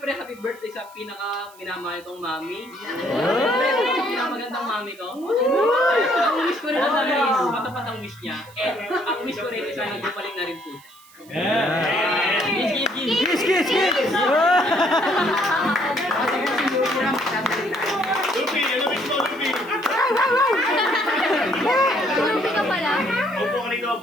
happy birthday sa pinaka minamahal kong mami. Siyempre, pinakamagandang mami ko. Ang wish ko rin ang dami is matapat ang wish niya. And ang wish ko rin is sana gumaling na rin po siya. Kiss, kiss, kiss! Lupi, ano miss mo, Lupi? Lupi ka pala? Opo ka rito,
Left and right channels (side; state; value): right; noise; hiss, 25 dB below the sound